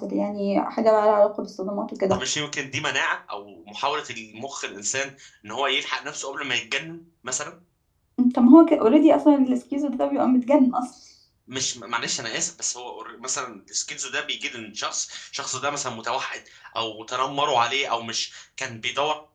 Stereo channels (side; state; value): both; identical; correlation 1.00